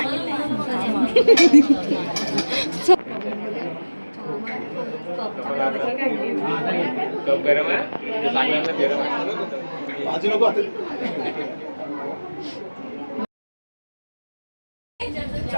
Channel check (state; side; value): inverted; both; correlation -1.00